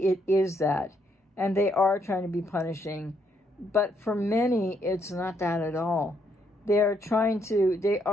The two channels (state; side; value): normal; both; correlation 0.74